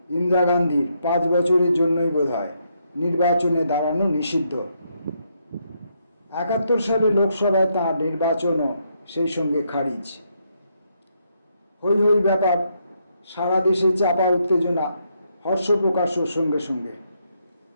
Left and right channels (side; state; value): both; inverted; correlation -0.77